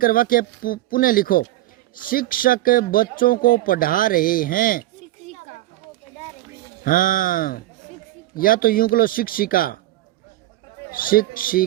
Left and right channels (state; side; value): quieter; left; 15.7 dB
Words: वाक्य पुनः लिखो। शिक्षक बच्चों को पढ़ा रहे हैं, हाँ, या तो यूं करो, शिक्षिका